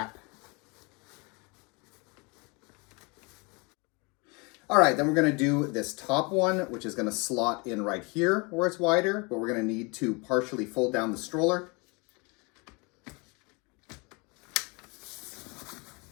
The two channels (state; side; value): quieter; right; 29.7 dB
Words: All right, then we're going to do this top one, which is going to slot in right here where it's wider, but we're going to need to partially fold down the stroller.